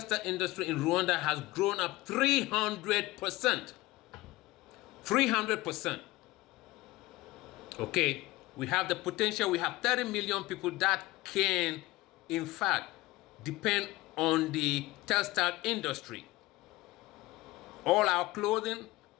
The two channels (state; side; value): quieter; right; 19.4 dB